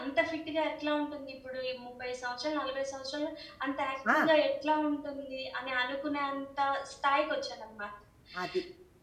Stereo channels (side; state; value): both; identical; correlation 1.00